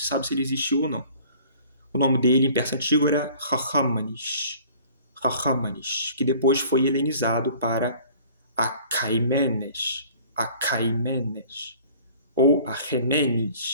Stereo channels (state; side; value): inverted; both; correlation -0.50